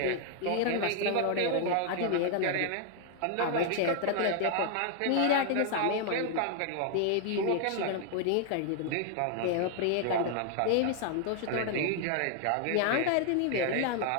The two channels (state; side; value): different; both; correlation 0.00